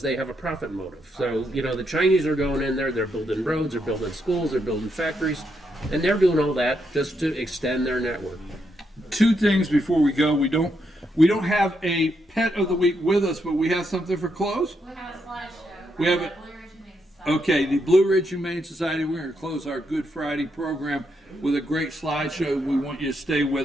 they have a profit motive. So, the Chinese are going in there, they're building roads, they're building schools, they're building factories, and they're doing all that just to extend their network. Two things before we go. We don't have a pet of the week with us, but we have something for clothes. We have a slideshow. We have it. Okay, the Blue Ridge Humane Society, we're going to close our Good Friday program with a great slideshow. We want you to stay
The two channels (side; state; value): both; normal; correlation 0.80